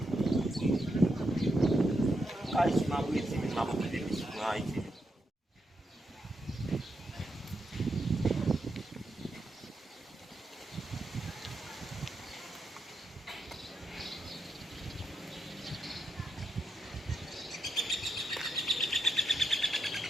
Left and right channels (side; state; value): both; normal; correlation 0.83